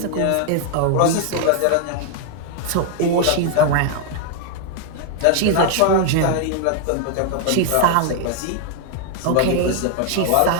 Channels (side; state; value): both; different; correlation 0.00